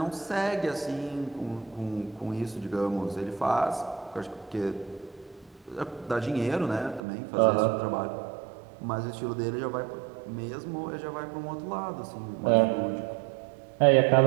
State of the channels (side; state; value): left; drops out; at 7.0 s